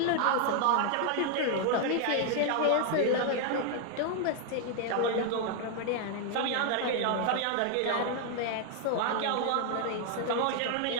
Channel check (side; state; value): both; different; correlation 0.00